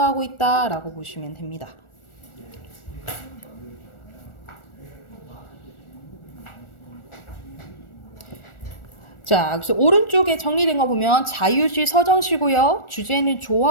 있다 라고 보시면 됩니다. 자, 그래서 오른쪽에 정리된 거 보면 자유시 서정시고요. 주제는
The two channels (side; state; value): right; late; 1.4 ms